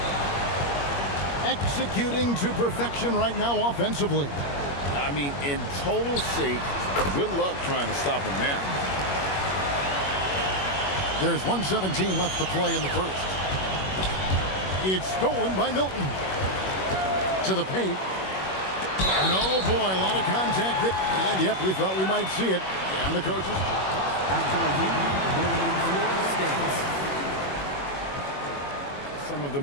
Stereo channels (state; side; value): late; right; 21 ms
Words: Executing to perfection right now offensively. I mean, in total sync. Good luck trying to stop him now. There's 1:17 left to play in the first. It's stolen by Milton. To the paint. No, boy, a lot of contact there. And, yep, we thought we might see it. And the coaches. After review, the winning floor stands. Some of the